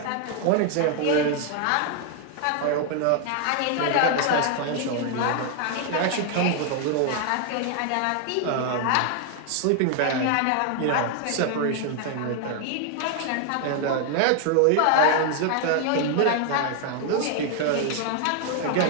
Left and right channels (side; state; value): both; different; correlation 0.00